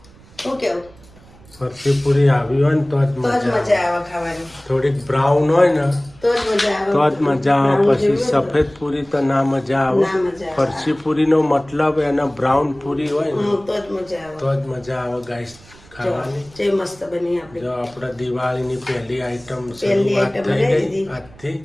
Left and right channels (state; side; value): noise; right; rumble, 24 dB below the sound